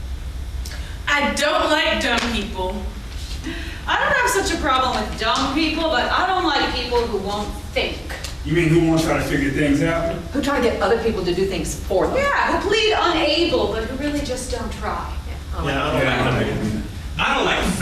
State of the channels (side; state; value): both; identical; correlation 1.00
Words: I don't like dumb people. I don't have such a problem with dumb people, but I don't like people who won't think. You mean who won't try to figure things out? Who try to get other people to do things for them. Yeah, who plead unable, but who really just don't try. Oh, I don't like